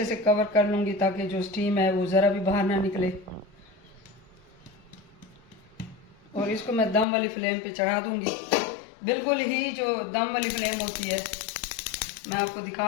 से कवर कर लूँगी ताकि जो स्टीम है वो ज़रा भी बाहर ना निकले। और इसको मैं दम वाली फ्लेम पे चढ़ा दूँगी। बिल्कुल ही जो दम वाली फ्लेम होती है, मैं आपको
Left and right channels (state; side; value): drops out; right; at 7.1 s